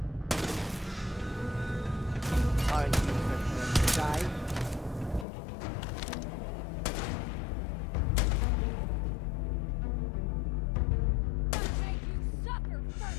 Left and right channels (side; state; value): right; drops out; at 5.2 s